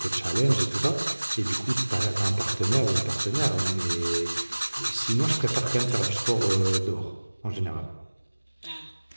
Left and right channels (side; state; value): both; inverted; correlation -1.00